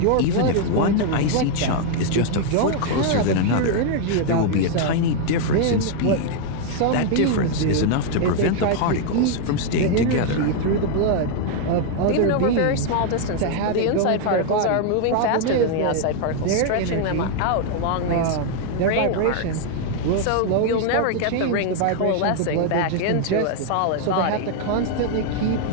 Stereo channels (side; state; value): both; different; correlation 0.00